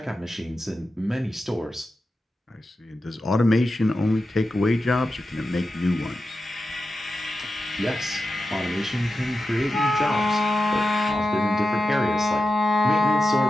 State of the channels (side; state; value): both; normal; correlation 0.91